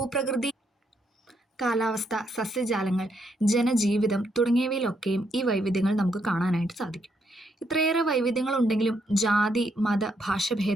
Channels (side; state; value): both; normal; correlation 0.76